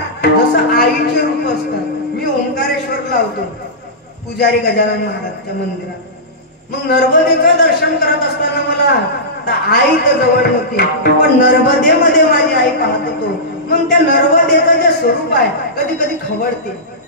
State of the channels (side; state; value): both; normal; correlation -0.16